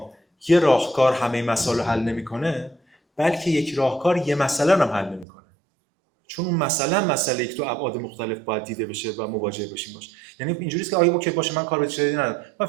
یه راهکار همه مسائل رو حل نمیکنه، بلکه یک راهکار یه مسئله رو هم حل نمیکنه. چون اون مسئله که تو ابعاد مختلف باید دیده بشه و مواجه بشیم باشه. یعنی اینجوریه که آیا اوکی باشه من کار به چیزی ندارم، من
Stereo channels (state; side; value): drops out; left; at 5.2 s